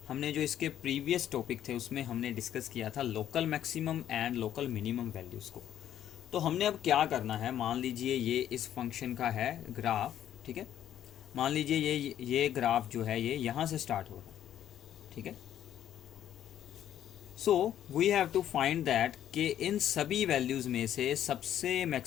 जो इसके प्रीवियस टॉपिक थे उसमें हमने डिस्कस किया था local maximum and local minimum values को। तो हमने अब क्या करना है, मान लीजिए ये इस फंक्शन का है ग्राफ, ठीक है। मान लीजिए ये ग्राफ जो है ये यहाँ से स्टार्ट हो रहा है, ठीक है। So we have to find that कि इन सभी वैल्यूज़ में से सबसे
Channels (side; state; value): right; quieter; 10.9 dB